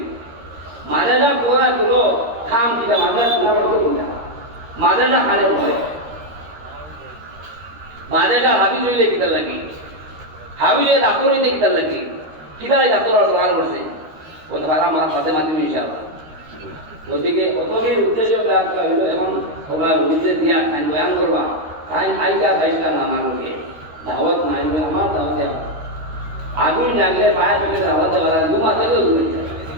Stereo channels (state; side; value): late; left; 13 ms